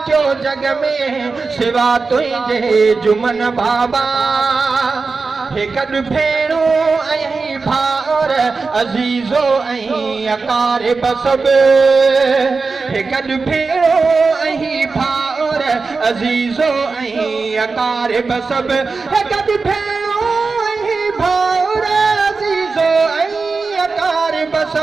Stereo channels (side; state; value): left; quieter; 4.3 dB